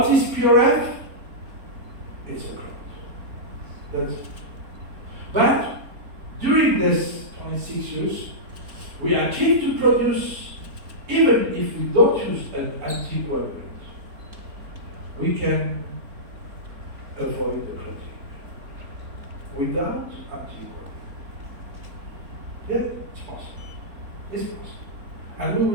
is PRF? It's a clot. That's it. But during this 26 years, we achieved to produce, even if we don't use an anticoagulant, we can avoid the clotting without anticoagulant. Yeah, it's possible. It's possible. And we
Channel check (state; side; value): late; left; 3.9 ms